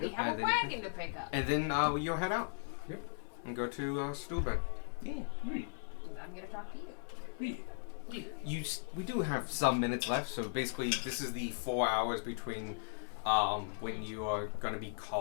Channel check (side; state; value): right; silent; 53 dB below the other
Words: have And a then- wagon to pick up. and then you'll head out. Yep. And go to Stuhlben. I'm gonna talk to you. We do have some minutes left, so basically this is the 4 hours between when you are going to be